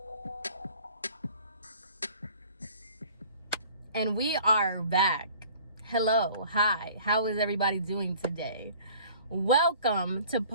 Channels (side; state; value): both; inverted; correlation -0.50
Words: and we are back. Hello, hi, how is everybody doing today? Welcome to